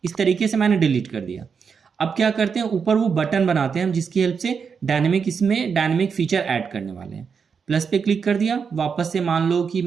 इस तरीके से मैंने डिलीट कर दिया। अब क्या करते हैं, ऊपर वो बटन बनाते हैं हम जिसकी हेल्प से इसमें डायनेमिक फीचर ऐड करने वाले हैं। प्लस पे क्लिक कर दिया। वापस से मान लो कि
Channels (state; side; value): quieter; left; 6.1 dB